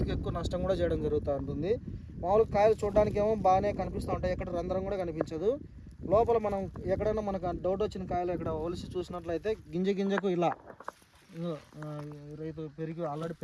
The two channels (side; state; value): both; identical; correlation 1.00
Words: ఎక్కువ నష్టం కూడా చేయడం జరుగుతూ ఉంటుంది. మామూలుగా కాయలు చూడడానికి ఏమో బాగానే కనిపిస్తూ ఉంటాయి, ఎక్కడ రంధ్రం కూడా కనిపించదు. లోపల మనం ఎక్కడైనా మనకు డౌట్ వచ్చిన కాయలు ఇక్కడ ఒలిసి చూసినట్లయితే గింజకు ఇలా రైతు ఆల్రెడీ